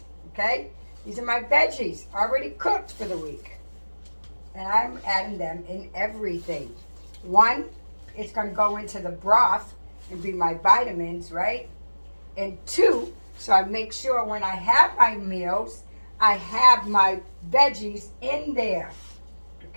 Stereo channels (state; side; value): inverted; both; correlation -1.00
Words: Okay? These are my veggies already cooked for the week. And I'm adding them in everything. 1, it's going to go into the broth and be my vitamins, right? And 2, so I make sure when I have my meals, I have my veggies in there.